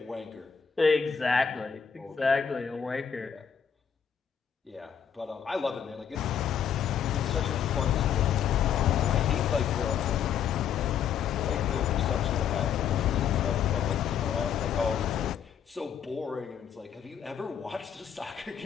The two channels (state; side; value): quieter; right; 7.9 dB